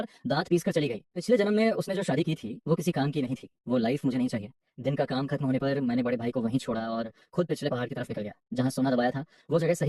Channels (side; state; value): both; identical; correlation 1.00